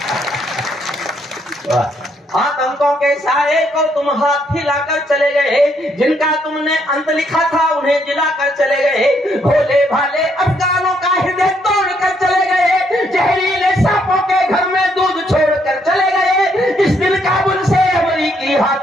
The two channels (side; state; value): both; normal; correlation 0.72